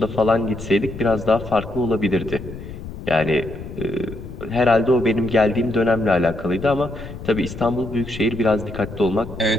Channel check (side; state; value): left; noise; rumble, 12 dB below the sound